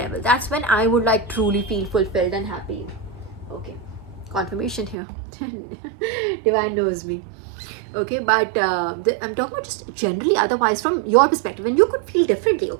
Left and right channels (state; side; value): drops out; left; at 5.0 s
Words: That's when I would like truly feel fulfilled and happy. Okay, confirmation here. Divine knows me. Okay, but I'm talking about just generally, otherwise from your perspective, and you could feel differently.